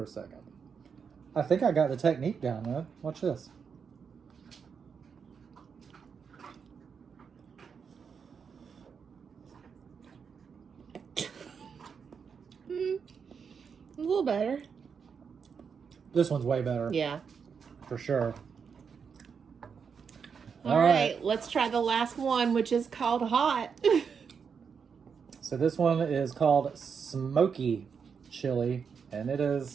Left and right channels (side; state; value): left; quieter; 6.3 dB